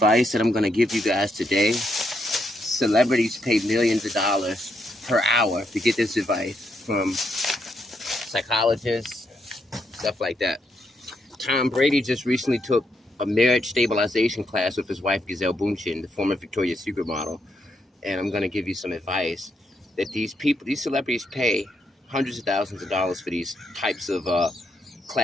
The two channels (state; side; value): normal; both; correlation 0.78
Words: that I'm going to give you guys today, celebrities pay millions of dollars per hour to get this advice from psychologists, stuff like that. Tom Brady just recently took a marriage stabilization class with his wife, Gisele Bündchen, the former Victoria's Secret model. And I'm going to give you some advice that these celebrities pay hundreds of thousands of dollars for these types of